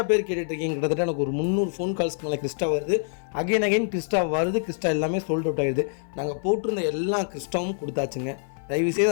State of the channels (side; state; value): right; silent; 57 dB below the other